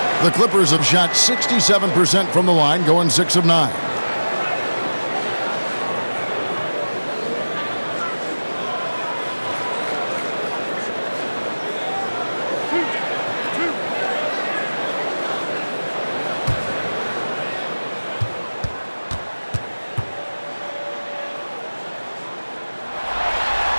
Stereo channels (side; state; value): both; inverted; correlation -1.00